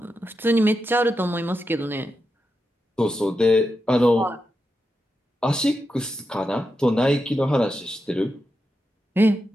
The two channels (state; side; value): normal; both; correlation 0.87